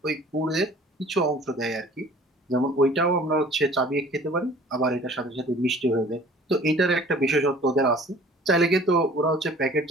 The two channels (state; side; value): normal; both; correlation 0.49